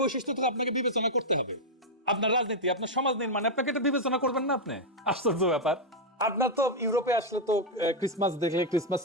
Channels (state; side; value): normal; both; correlation -0.01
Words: বৈশিষ্ট্য তো আপনাকে বিবেচনা করতে হবে। আপনার রাজনীতি, আপনার সমাজ নির্মাণে আপনাকে এটা বিবেচনা করবেন না? আপনি আশ্চর্য ব্যাপার। আপনার তো ইউরোপে আসলে তো ক্রিসমাস দেখলে, ক্রিসমাস